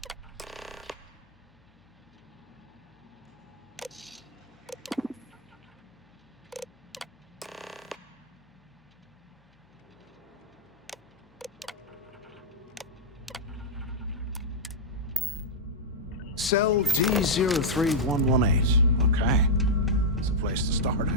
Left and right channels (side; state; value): both; normal; correlation -0.06